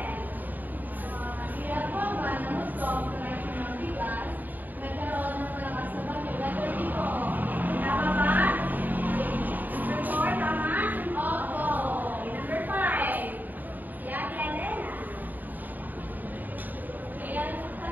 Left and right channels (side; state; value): left; late; 0.086 ms